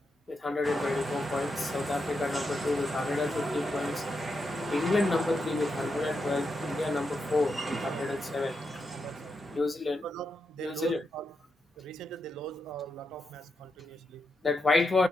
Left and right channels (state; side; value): normal; both; correlation 0.85